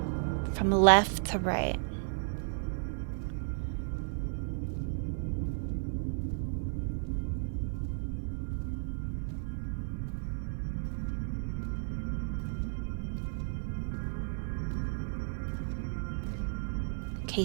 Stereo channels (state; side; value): silent; left; 55 dB below the other